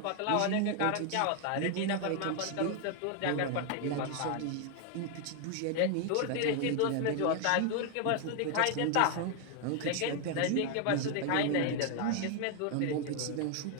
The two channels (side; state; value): both; different; correlation 0.00